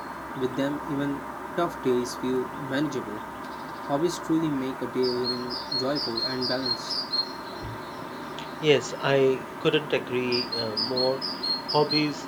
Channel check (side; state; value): both; identical; correlation 1.00